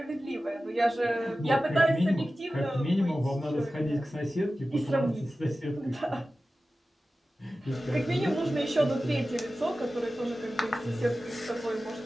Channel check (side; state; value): both; normal; correlation 0.95